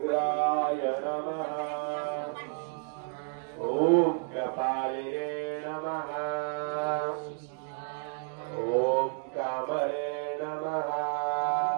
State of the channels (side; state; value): left; silent; 57 dB below the other